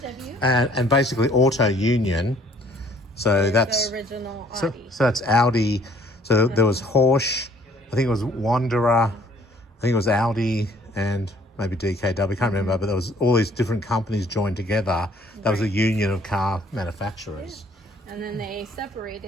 And basically Auto Union. So that's the original so Audi. that's Audi. So there was Horsch, I think it was Wanderer, I think it was Audi and maybe DKW, I can't remember, but there was all these different companies joined together. That was a union of car manufacturers. And then they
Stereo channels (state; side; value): normal; both; correlation 0.59